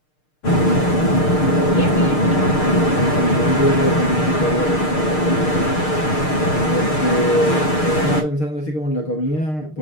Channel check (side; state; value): right; late; 6.6 ms